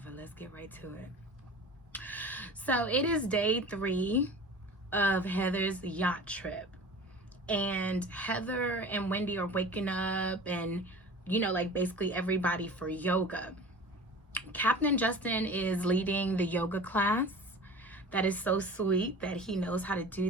Let's get right to it. So it is day 3 of Heather's yacht trip. And Heather and Wendy are waking up and, like basically everybody for yoga. Captain Justin is leading the yoga class. That is so sweet that he knows how to do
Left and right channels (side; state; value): both; normal; correlation 0.38